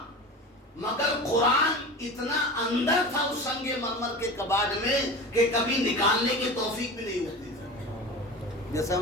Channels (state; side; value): normal; both; correlation 0.31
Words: مگر قرآن اتنا اندر تھا اس سنگ مرمر کے کباڑ میں کہ کبھی نکالنے کی توفیق بھی نہیں ہوتی تھی. جیسے